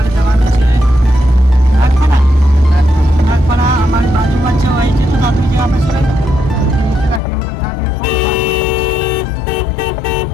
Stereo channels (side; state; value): right; drops out; at 7.2 s